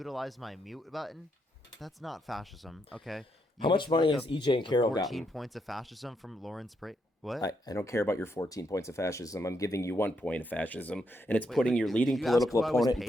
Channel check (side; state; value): both; normal; correlation 0.78